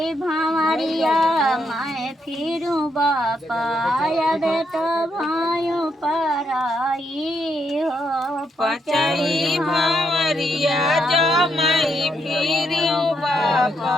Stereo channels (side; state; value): both; normal; correlation 0.77